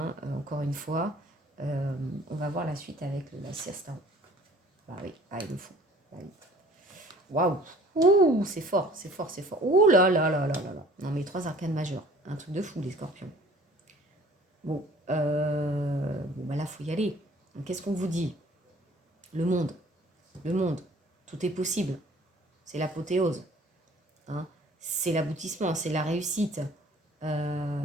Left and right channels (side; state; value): both; normal; correlation 0.51